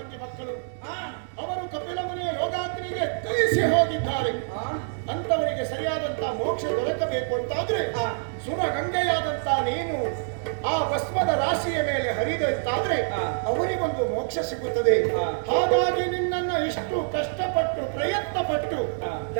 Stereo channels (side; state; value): left; silent; digital silence